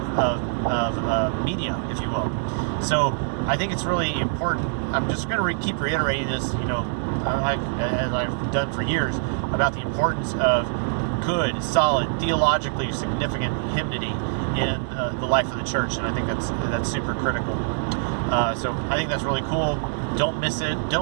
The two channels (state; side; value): silent; left; digital silence